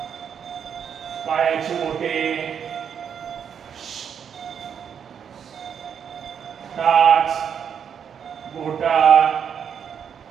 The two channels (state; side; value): quieter; left; 7.7 dB